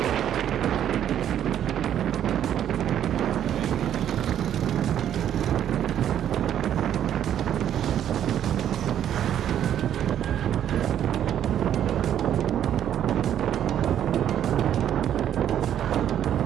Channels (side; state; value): left; quieter; 10.3 dB